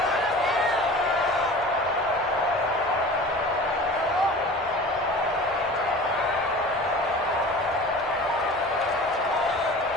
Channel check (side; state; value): both; normal; correlation 0.39